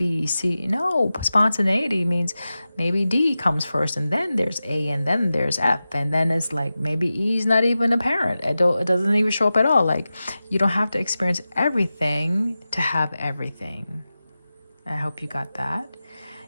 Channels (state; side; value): inverted; both; correlation -0.94